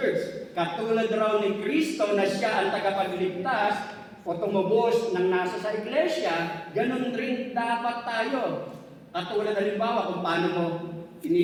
katulad raw ni Kristo na siya ang tagapagligtas o tumubos ng nasa sa iglesia, ganun rin dapat tayo. Katulad halimbawa kung paano mo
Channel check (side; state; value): both; identical; correlation 1.00